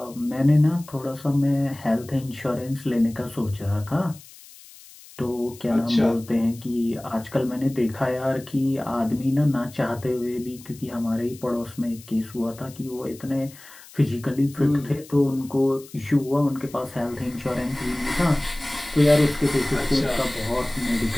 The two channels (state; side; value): noise; left; hiss, 21 dB below the sound